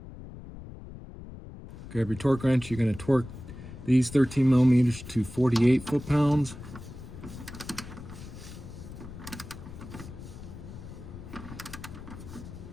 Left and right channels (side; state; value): left; noise; rumble, 13 dB below the sound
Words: Grab your torque wrench, you're going to torque these 13mm to 48 foot-pounds.